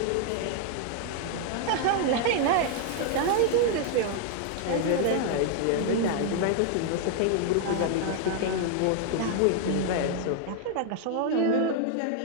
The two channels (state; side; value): different; both; correlation 0.00